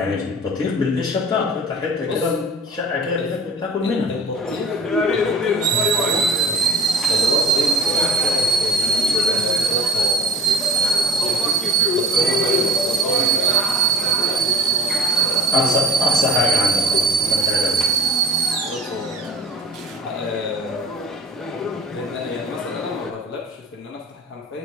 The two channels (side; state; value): both; normal; correlation 0.41